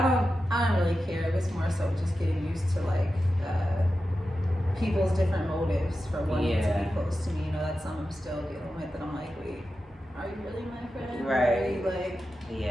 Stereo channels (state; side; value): normal; both; correlation 0.92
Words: I don't really care. It's more so just getting used to like people's different motives for wanting to Yeah. be close to me. You know, that's something I'm still dealing with, and I'm like, wait, are you really my friend? Or Right. are you like